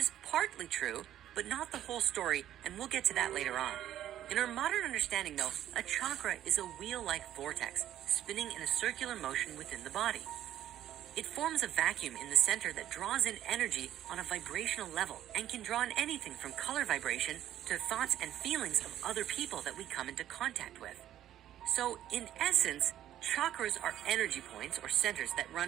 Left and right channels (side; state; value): left; quieter; 11.9 dB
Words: partly true, but not the whole story, and we'll get to that later on. In our modern understanding, though, a chakra is a wheel-like vortex spinning in a circular motion within the body. It forms a vacuum in the center that draws in energy on a vibrational level and can draw in anything from color vibration to thoughts and feelings of other people that we come into contact with. So, in essence, chakras are energy points or centers that